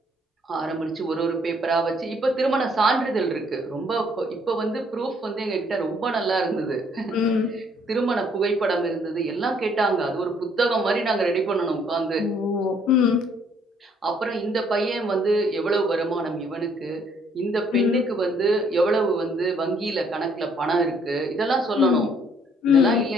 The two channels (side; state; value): both; normal; correlation 0.65